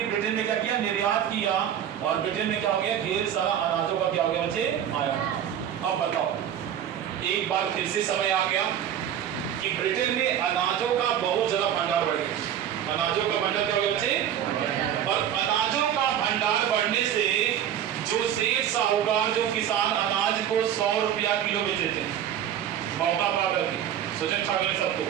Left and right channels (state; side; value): quieter; left; 10.0 dB